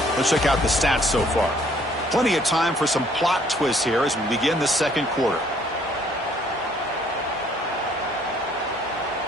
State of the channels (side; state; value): both; normal; correlation 0.62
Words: Let's check out the stats so far. Plenty of time for some plot twists here as we begin the second quarter.